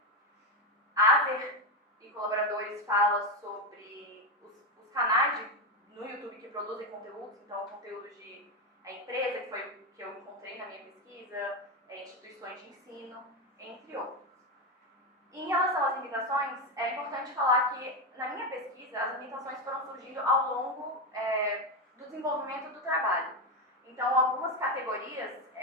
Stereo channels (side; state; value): both; normal; correlation 0.10